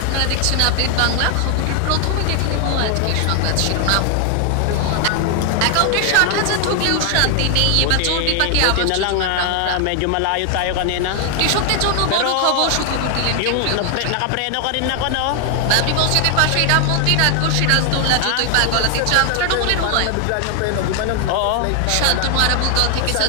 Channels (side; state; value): both; different; correlation 0.00